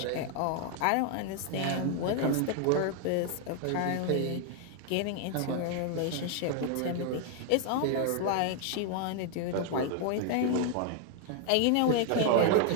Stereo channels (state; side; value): different; both; correlation 0.00